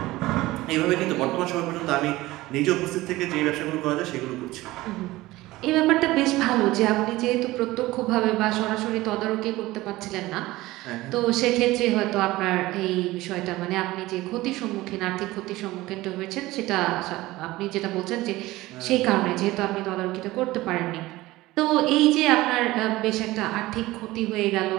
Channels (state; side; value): quieter; left; 18.4 dB